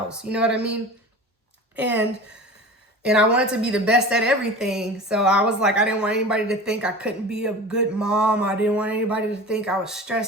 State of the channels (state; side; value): normal; both; correlation 0.35